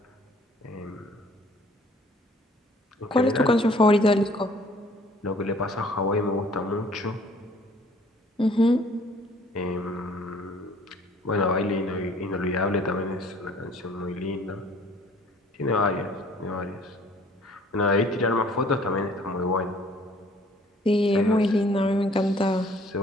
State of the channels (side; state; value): both; normal; correlation 0.56